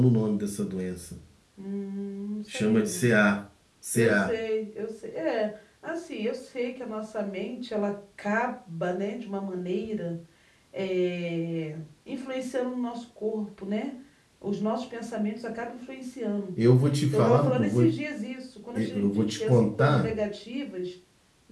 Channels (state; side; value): identical; both; correlation 1.00